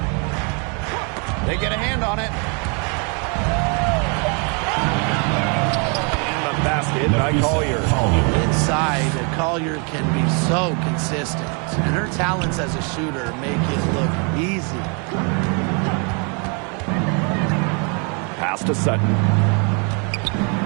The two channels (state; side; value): quieter; left; 35.5 dB